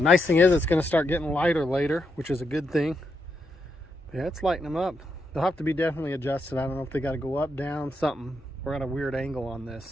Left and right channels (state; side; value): normal; both; correlation 0.82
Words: thing is it's going to start getting lighter later, which is a good thing. Yeah, it's lighting them up. They'll have to be definitely adjusted. I don't know if they got to go up, down, something. We're at a weird angle on this.